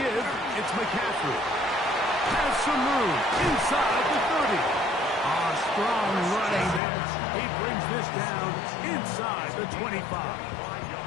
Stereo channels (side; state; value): right; drops out; at 6.8 s